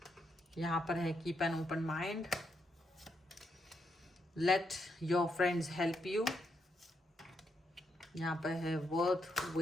यहाँ पर है keep an open mind, let your friends help you, यहाँ पर है वर्थ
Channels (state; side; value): normal; both; correlation 0.79